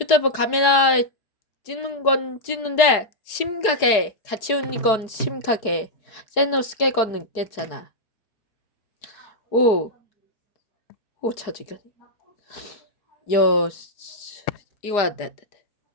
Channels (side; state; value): right; late; 4.8 ms